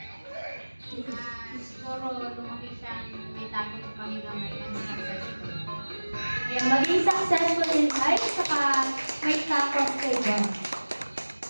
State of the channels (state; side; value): inverted; both; correlation -1.00